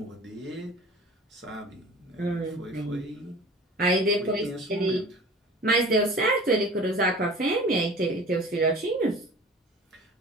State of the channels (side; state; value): both; normal; correlation 0.42